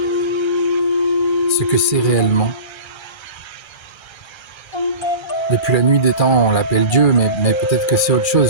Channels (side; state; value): right; late; 1.3 ms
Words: ce que c'est réellement. Depuis la nuit des temps, on l'appelle Dieu, mais peut-être que c'est autre